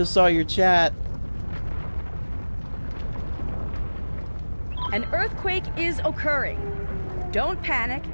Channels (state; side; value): inverted; both; correlation -1.00